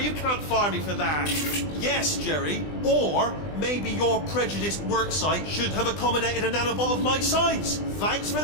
you can't fire me for that. Yes, Jerry. Or maybe your prejudiced worksite should have accommodated a nanobot of my size. Thanks for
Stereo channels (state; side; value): late; right; 20 ms